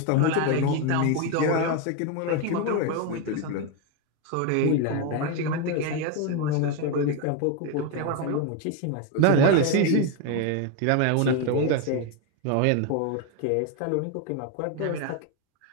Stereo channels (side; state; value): both; different; correlation 0.02